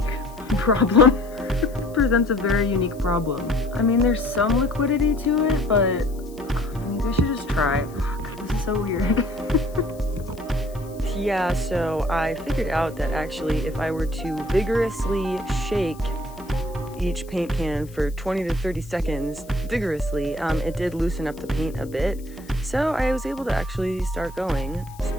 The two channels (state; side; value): noise; left; hiss, 24 dB below the sound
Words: problem. Presents a very unique problem. I mean, there's some liquidity to it, but maybe I should just try. Fuck, this is so weird. Yeah, so I figured out that actually if I were to vigorously shake each paint can for 20 to 30 seconds, vigorously, it did loosen up the paint a bit. So I was able to actually start going. It's